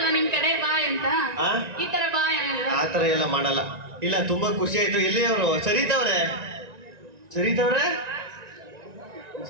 ನಿಮ್ ಕಡೆ ಬಾಯ್ ಅಂತ? ಈ ತರ ಬಾಯ್ ಆ ತರ ಎಲ್ಲ ಮಾಡಲ್ಲ. ಇಲ್ಲ ತುಂಬಾ ಖುಷಿ ಆಯ್ತು. ಎಲ್ಲಿ ಅವರು? ಸರಿತವ್ರೆ ಸರಿ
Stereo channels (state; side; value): late; left; 1.9 ms